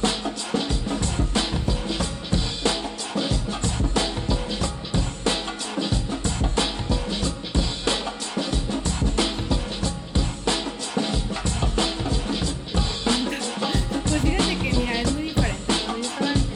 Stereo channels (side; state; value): both; identical; correlation 1.00